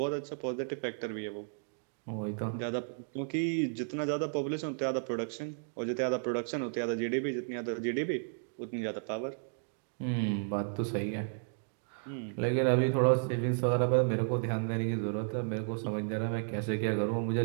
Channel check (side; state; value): left; silent; digital silence